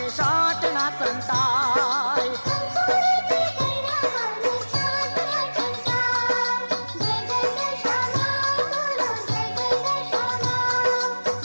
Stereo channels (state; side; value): inverted; both; correlation -1.00